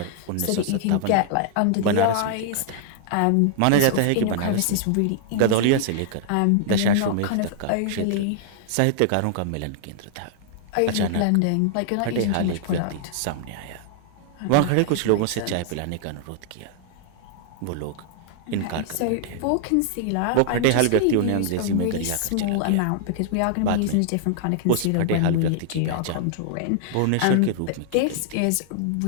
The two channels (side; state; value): both; different; correlation -0.01